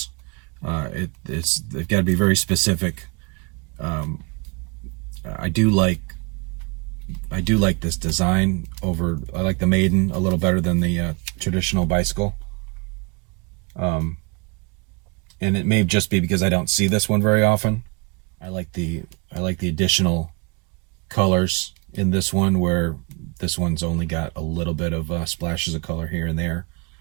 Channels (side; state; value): left; quieter; 31.1 dB